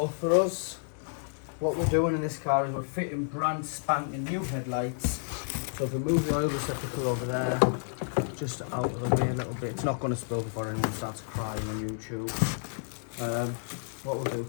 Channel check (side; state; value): right; silent; digital silence